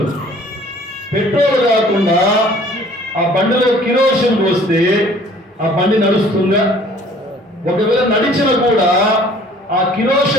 పెట్రోల్ కాకుండా ఆ బండిలో కిరోసిన్ పోస్తే ఆ బండి నడుస్తుందా? ఒకవేళ నడిచిన కూడా ఆ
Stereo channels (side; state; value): both; normal; correlation 0.53